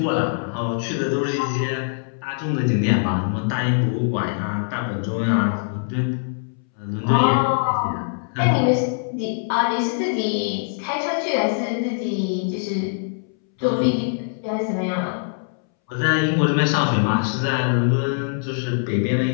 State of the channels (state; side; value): silent; right; 64 dB below the other